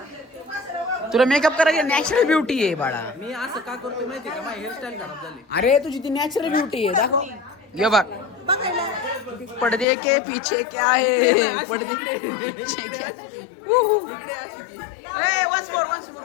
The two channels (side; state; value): right; drops out; at 9.9 s